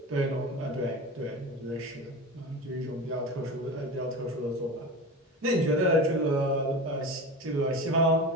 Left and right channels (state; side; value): normal; both; correlation 0.29